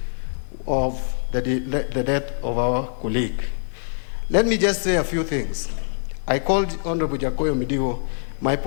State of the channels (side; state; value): right; silent; digital silence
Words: of the death of our colleague. Let me just say a few things. I called Honorable Jakoyo Mediwo my